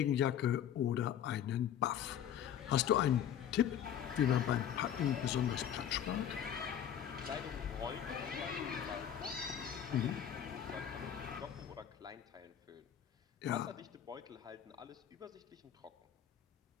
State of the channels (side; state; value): right; quieter; 9.6 dB